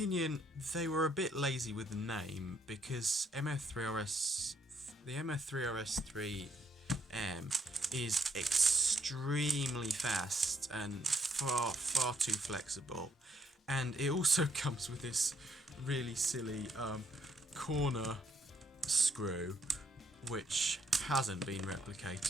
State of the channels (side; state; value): both; normal; correlation 0.72